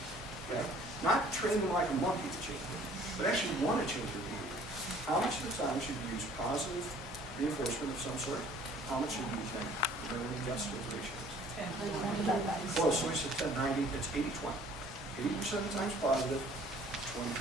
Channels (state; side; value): normal; both; correlation 0.54